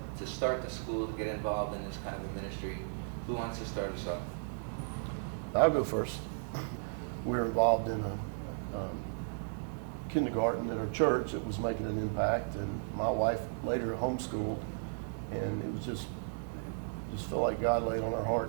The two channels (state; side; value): silent; left; digital silence